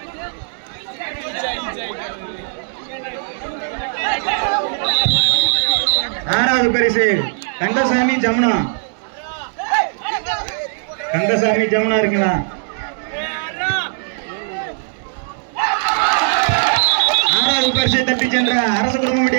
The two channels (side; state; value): left; silent; 67 dB below the other